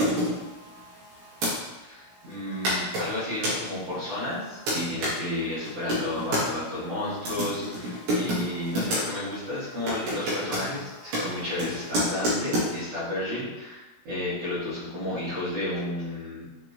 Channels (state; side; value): late; left; 16 ms